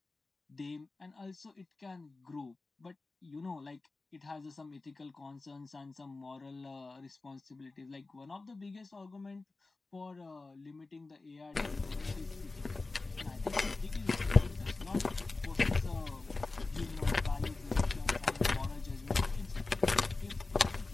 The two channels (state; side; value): quieter; right; 3.5 dB